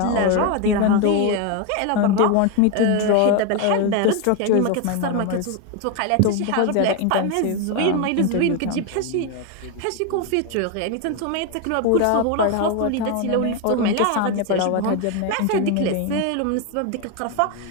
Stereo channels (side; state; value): both; different; correlation 0.02